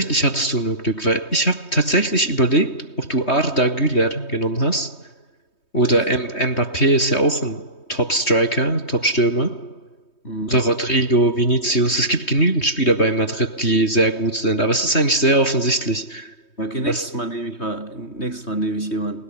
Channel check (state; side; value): late; right; 3.2 ms